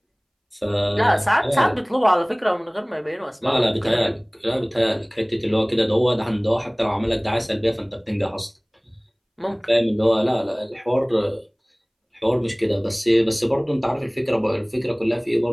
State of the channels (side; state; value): both; identical; correlation 1.00